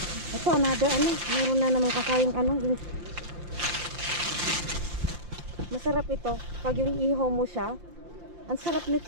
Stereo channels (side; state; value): left; late; 5.7 ms